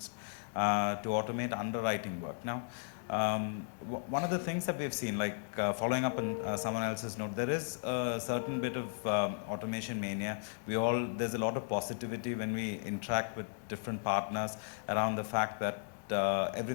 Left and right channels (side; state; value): right; silent; digital silence